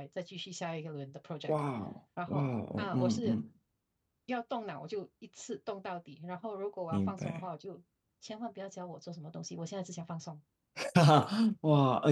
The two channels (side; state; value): both; identical; correlation 1.00